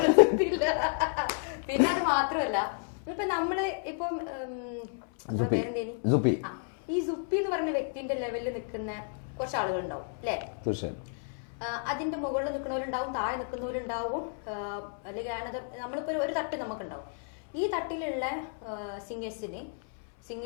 ഇല്ല. പിന്നെ അത് മാത്രമല്ല, ഇപ്പൊ നമ്മള് ഇപ്പം നിങ്ങളെ പേരെന്തേനി ഈ സുപ്പി എന്ന് പറഞ്ഞ വ്യക്തിന്റെ ലെവലിൽ നിൽക്കുന്ന കുറച്ച് ആളുകൾ ഉണ്ടാവും അല്ലേ? അതിന്റെ മുകളിൽ നിൽക്കുന്നവരുണ്ടാവും, താഴെ നിൽക്കുന്നവരുണ്ടാവും, അല്ലെങ്കിൽ നമ്മളിപ്പോ ഒരു തട്ട് നമുക്കുണ്ടാവും. ഈ തട്ടിലുള്ള സിംഗേഴ്സിന്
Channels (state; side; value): silent; right; 57 dB below the other